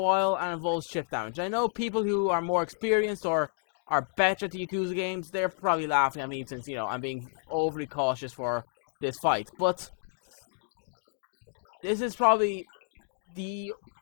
and involves chip damage. I know people who are more experienced or are better at the Yakuza games, they're probably laughing at me since, I'm being overly cautious for this fight. But this is probably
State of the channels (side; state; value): right; silent; digital silence